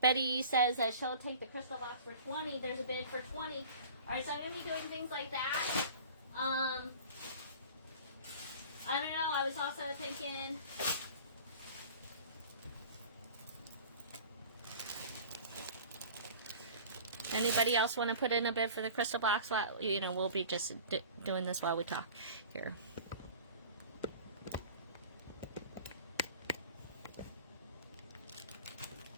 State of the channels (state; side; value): inverted; both; correlation -0.42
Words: says that she'll take the crystal box for 20. There's a bid for 20. All right, so I'm going to be doing things like that. I don't know, I was also thinking... Anybody else want to put in a bid for the crystal box? Well, you know, we'll be just doing this while we talk here.